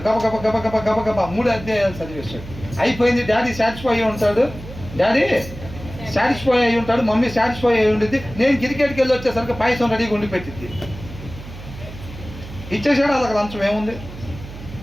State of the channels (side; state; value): right; noise; hum, 13 dB below the sound